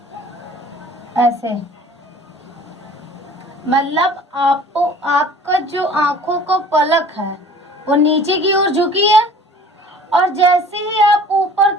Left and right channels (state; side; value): normal; both; correlation 0.48